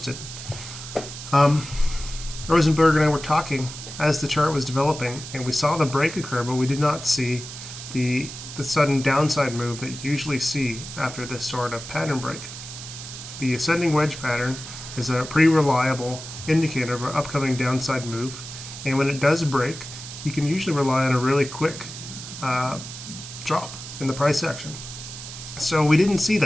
Rosenberg and I were talking as the chart was developing and we saw the break occur, but we did not see the sudden downside move that you usually see after this sort of pattern break. The ascending wedge pattern is a pretty reliable indicator of an upcoming downside move, and when it does break, you can usually rely on a really quick drop in the price action. So we didn't see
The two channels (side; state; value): right; noise; hiss, 11 dB below the sound